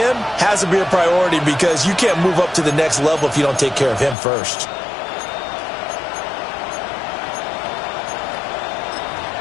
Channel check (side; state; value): right; drops out; at 4.2 s